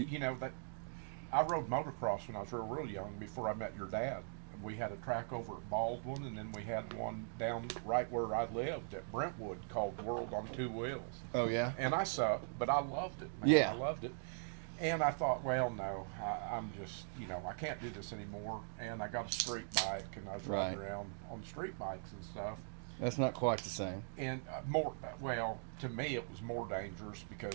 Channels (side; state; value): left; silent; digital silence